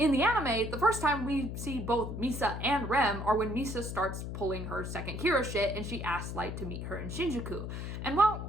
the anime, the first time we see both Misa and Rem are when Misa starts pulling her second Kira shit and she asks Light to meet her in Shinjuku. And while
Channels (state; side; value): noise; left; hum, 6 dB below the sound